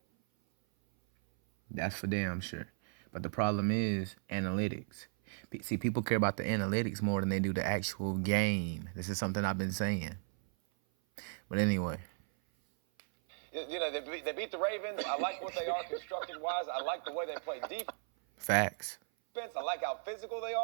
That's for damn sure. But the problem is analytics. See, people care about the analytics more than they do the actual game. This is something I've been saying. But anyway. They beat the Ravens. I like what they are constructed-wise. I like the way they play defense. Facts. I like how physical they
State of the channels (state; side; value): silent; left; 54 dB below the other